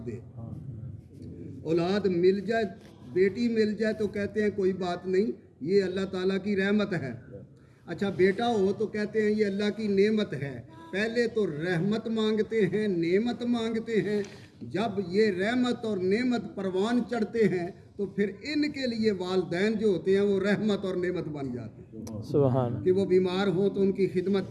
دے۔ اولاد مل جائے، بیٹی مل جائے تو کہتے ہیں کوئی بات نہیں، یہ اللہ تعالیٰ کی رحمت ہے۔ اچھا بیٹا ہو تو کہتے ہیں یہ اللہ کی نعمت ہے۔ پہلے تو رحمت مانگتے ہیں، نعمت مانگتے ہیں، جب یہ رحمت اور نعمت پروان چڑھتے ہیں تو پھر ان کے لیے والدین جو ہوتے ہیں وہ رحمت اور نعمت بن جاتے ہیں۔ سبحان، کہ وہ بیمار ہوں تو ان کی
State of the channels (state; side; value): identical; both; correlation 1.00